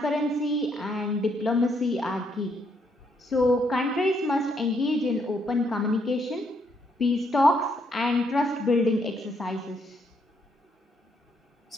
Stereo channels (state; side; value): normal; both; correlation 0.74